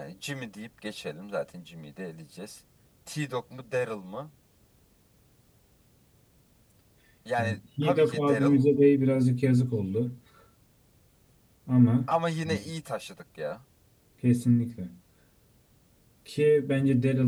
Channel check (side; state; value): both; identical; correlation 1.00